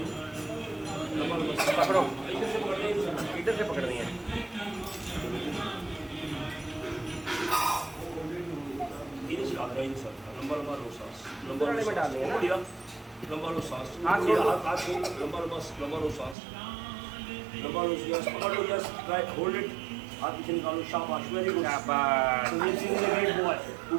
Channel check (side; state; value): left; drops out; at 16.4 s